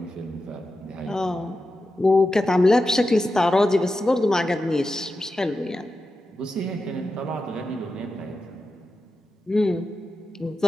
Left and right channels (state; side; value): normal; both; correlation 0.90